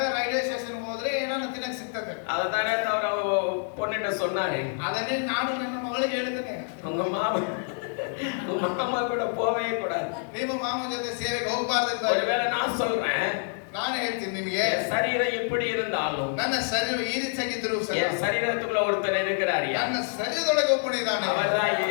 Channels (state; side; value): silent; right; 57 dB below the other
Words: ರೈಲ್ವೆ ಸ್ಟೇಷನ್ ಹೋದ್ರೆ ಏನಾದ್ರು ತಿನ್ನಕ್ ಸಿಗ್ತದೆ. அதத்தானே அவர் பொண்ணுகிட்ட சொன்னாரு. ಅದನ್ನೇ ನಾನು ನನ್ನ ಮಗಳಿಗೆ ಹೇಳ್ತೇನೆ. உங்க மாமா கூட போவே கூடாது. ನಿಮ್ಮ ಮಾಮ ಜೊತೆ ಸೇವೆಗೆ ಹೋಗಬಾರ್ದು ಅಂತ. ஒருவேளை நான் சொல்றேன். ನಾನು ಹೇಳ್ತೀನಿ ನಿಮಗೆ சரீரம் எப்படி இருந்தாலும் ನನ್ನ ಶರೀರ ಈ ರೀತಿಯಾಗಿದ್ರು என் சரீரத்துக்குள்ள ஒருத்தர் இருக்கிறாரு. ನನ್ನ ಶರೀರದೊಳಗೆ ಒಬ್ಬನಿದ್ದಾನೆ. அவர்தான்